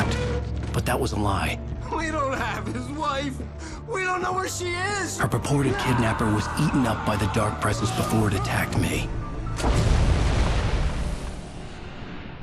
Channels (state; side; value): identical; both; correlation 1.00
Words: but that was a lie. We don't have his wife. We don't know where she is. Her purported kidnapper was eaten up by the dark presence before it attacked me.